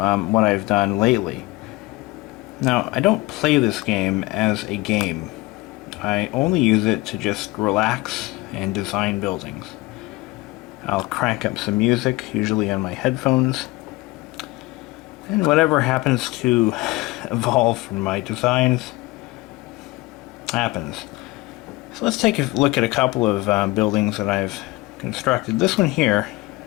I've done lately. Now, I don't play this game as a game. I only use it to just relax and design buildings. I'll crank up some music, usually on my headphones, and whatever happens to evolve from my designs happens. So let's take a look at a couple of buildings that I've constructed. This one here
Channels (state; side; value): quieter; right; 21.2 dB